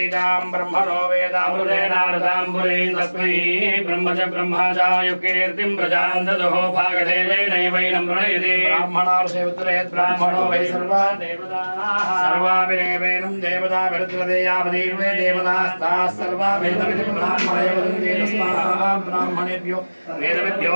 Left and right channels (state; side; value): inverted; both; correlation -1.00